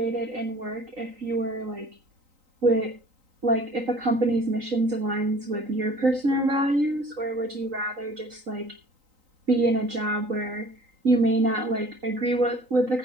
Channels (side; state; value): left; late; 3.9 ms